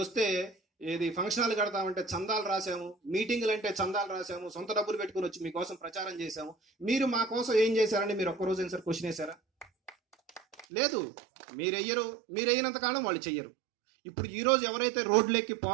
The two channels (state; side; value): drops out; left; at 10.7 s